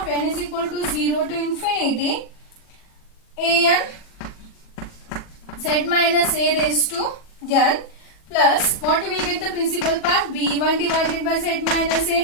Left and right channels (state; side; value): late; right; 40 ms